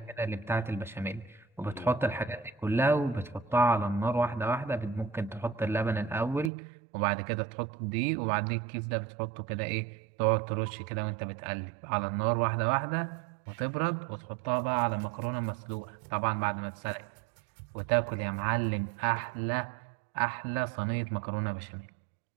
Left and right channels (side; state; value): left; drops out; at 6.5 s